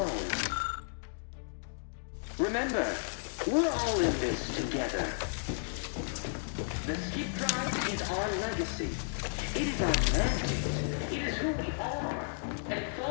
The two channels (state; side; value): silent; right; digital silence